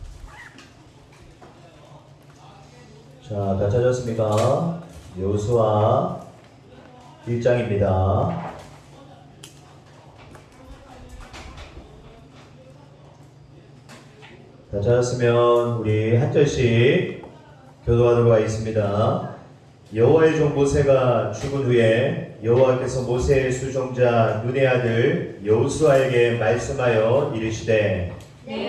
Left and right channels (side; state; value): both; identical; correlation 1.00